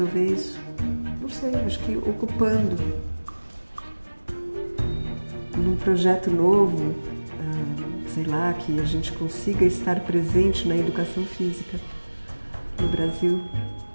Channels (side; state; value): both; inverted; correlation -1.00